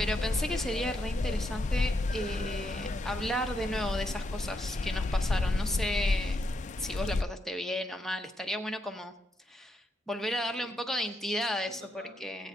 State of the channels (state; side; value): normal; both; correlation 0.79